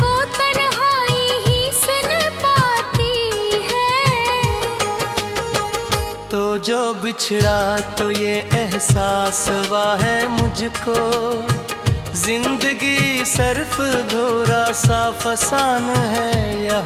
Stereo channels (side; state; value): both; identical; correlation 1.00